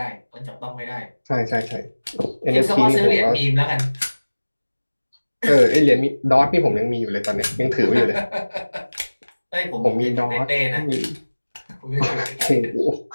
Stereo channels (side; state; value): both; inverted; correlation -1.00